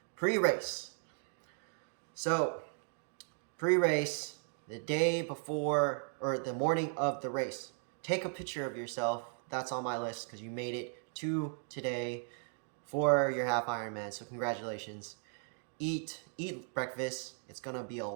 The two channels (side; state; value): left; silent; 53 dB below the other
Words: Pre-race. So pre-race, the day before or the morning of the race, take a picture of yourself. That's on my list because you made it to today for your Half Ironman, so congratulations. Eat breakfast. It's gonna be a